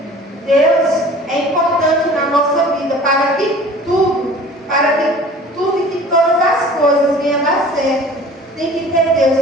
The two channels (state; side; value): normal; both; correlation 0.45